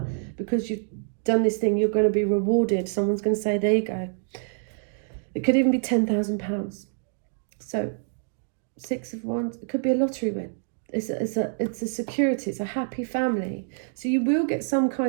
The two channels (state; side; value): silent; left; digital silence